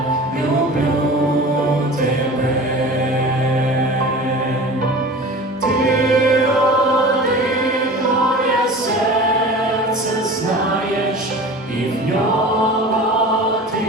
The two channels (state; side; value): normal; both; correlation 0.38